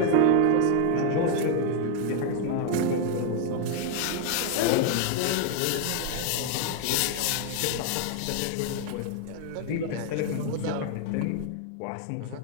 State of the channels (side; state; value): both; different; correlation 0.00